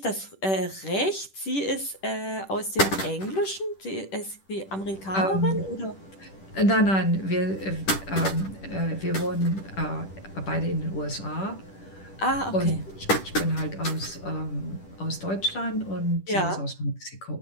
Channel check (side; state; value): right; late; 10 ms